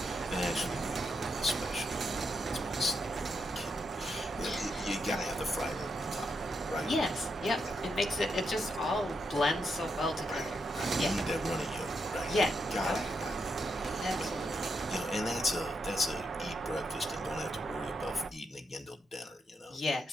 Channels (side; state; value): both; normal; correlation 0.81